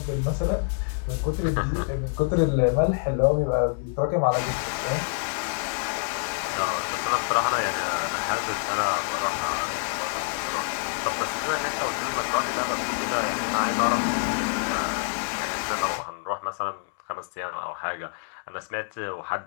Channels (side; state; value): right; silent; digital silence